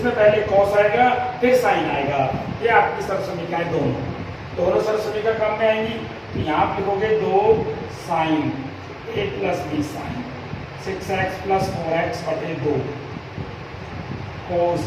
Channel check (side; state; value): both; identical; correlation 1.00